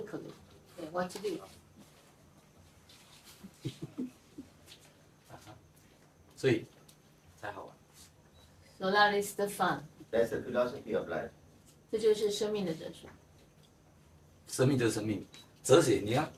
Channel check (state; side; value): identical; both; correlation 1.00